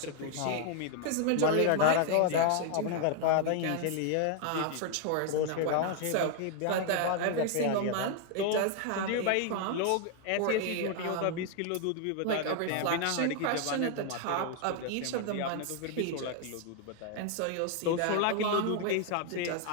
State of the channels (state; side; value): different; both; correlation 0.00